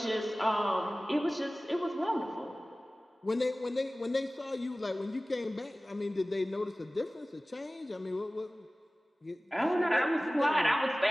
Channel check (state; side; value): normal; both; correlation 0.98